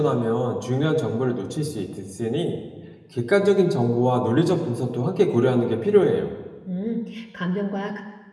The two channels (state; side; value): identical; both; correlation 1.00